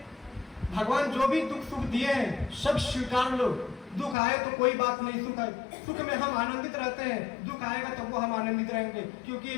भगवान जो भी दुख सुख दिए हैं सब स्वीकार लो। दुख आए तो कोई बात नहीं, सुख आए, सुख में हम आनंदित रहते हैं, दुख आएगा तब वो हम आनंदित रहेंगे, क्योंकि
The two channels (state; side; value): drops out; right; at 4.2 s